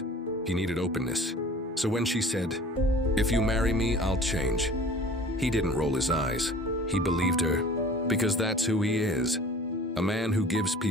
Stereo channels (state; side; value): normal; both; correlation 0.45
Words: He needed openness. So when she said, "If you marry me, I'll change," he didn't roll his eyes. He believed her, because that's who he is. A man who gives